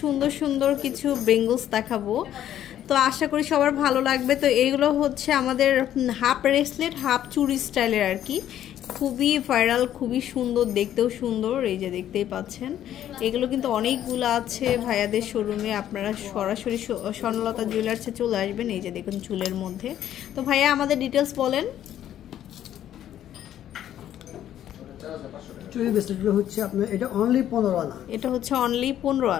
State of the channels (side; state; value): right; quieter; 11.3 dB